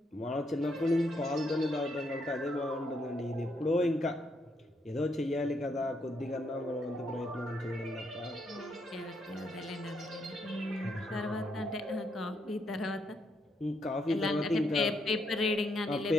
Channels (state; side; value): normal; both; correlation 0.76